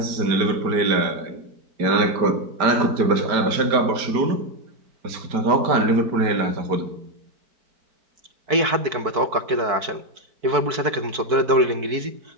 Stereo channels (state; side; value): late; left; 4.6 ms